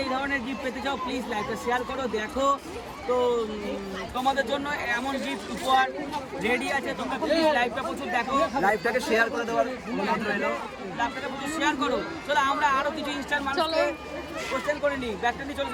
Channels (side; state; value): both; identical; correlation 1.00